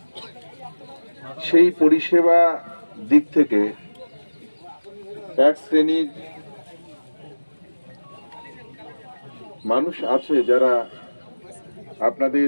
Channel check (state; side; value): inverted; both; correlation -1.00